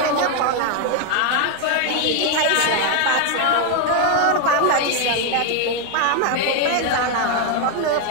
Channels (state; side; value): different; both; correlation 0.01